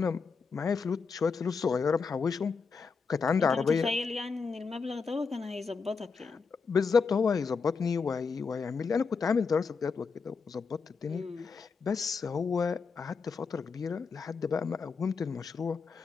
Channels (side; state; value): right; quieter; 5.2 dB